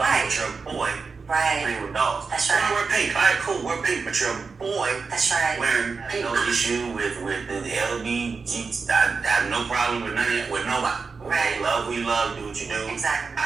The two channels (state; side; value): quieter; left; 4.8 dB